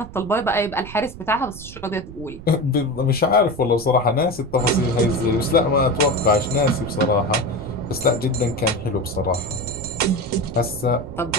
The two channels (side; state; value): right; noise; rumble, 14 dB below the sound